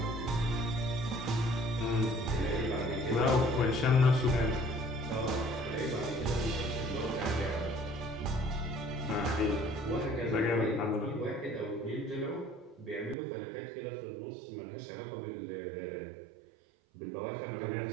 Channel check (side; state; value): left; drops out; at 13.2 s